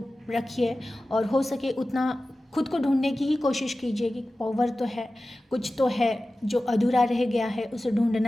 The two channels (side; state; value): both; normal; correlation 0.95